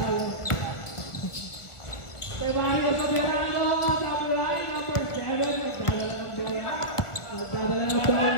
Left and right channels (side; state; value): right; late; 1.4 ms